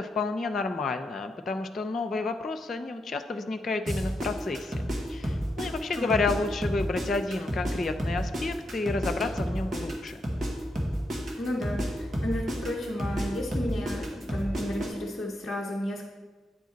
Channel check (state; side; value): normal; both; correlation 0.82